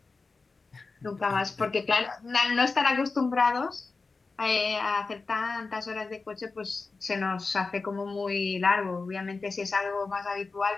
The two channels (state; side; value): quieter; right; 4.1 dB